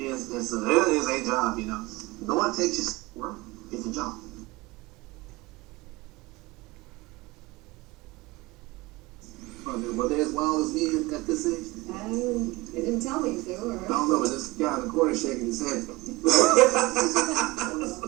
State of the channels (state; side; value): quieter; left; 21.5 dB